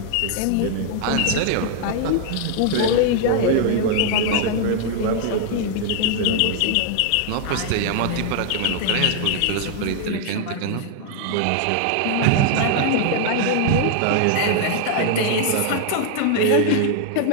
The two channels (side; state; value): both; different; correlation 0.00